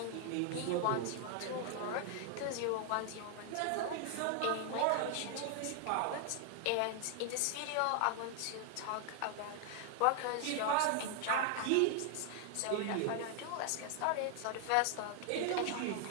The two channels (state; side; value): different; both; correlation 0.00